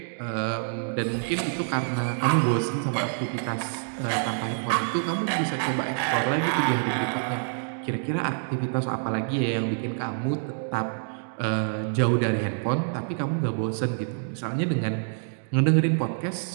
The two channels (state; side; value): silent; left; 60 dB below the other